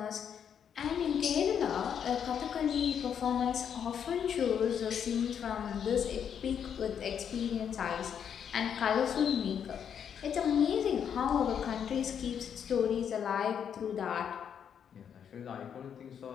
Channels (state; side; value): quieter; right; 8.1 dB